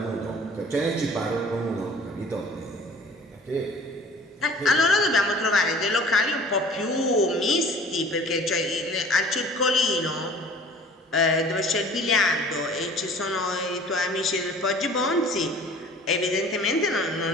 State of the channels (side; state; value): both; normal; correlation 0.48